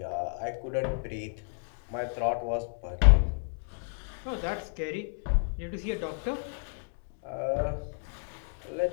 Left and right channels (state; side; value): silent; right; digital silence